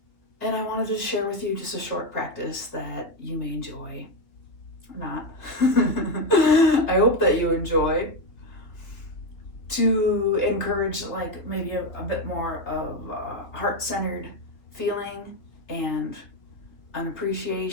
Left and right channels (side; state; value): right; late; 3.1 ms